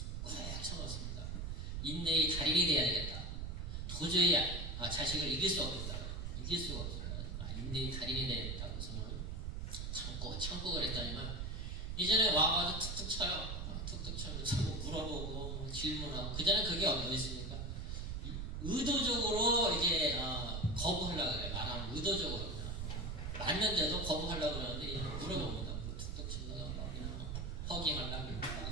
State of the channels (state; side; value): noise; right; rumble, 4 dB below the sound